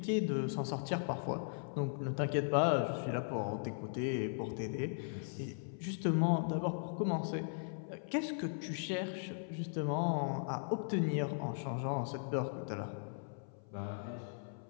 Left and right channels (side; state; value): right; silent; 52 dB below the other